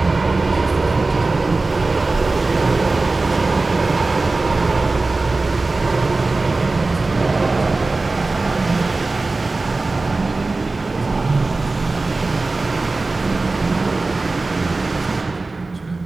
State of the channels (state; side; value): quieter; left; 3.5 dB